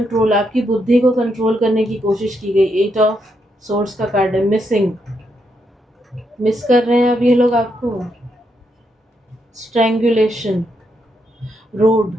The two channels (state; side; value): normal; both; correlation 0.79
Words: आपकी बुद्धि को कंट्रोल करने की कोशिश की गई। 8 ऑफ सोर्स का कार्ड है। मिसिंग, मिस कर रहे हैं अब ये लोग आपको। स्ट्रैंगुलेशन, रोड,